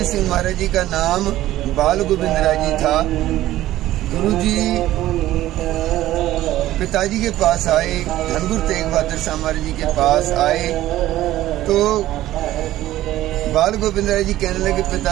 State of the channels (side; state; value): left; quieter; 14.7 dB